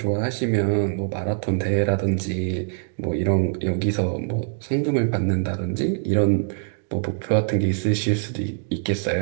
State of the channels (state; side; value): silent; left; digital silence